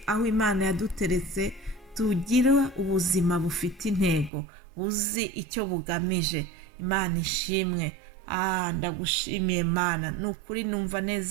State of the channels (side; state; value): left; drops out; at 4.3 s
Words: aho Imana yaduteretse tugira ubuzima bufite intego, uzi icyo bugamije. Imana ishimwe. Ndagushimiye Mana, ni ukuri numva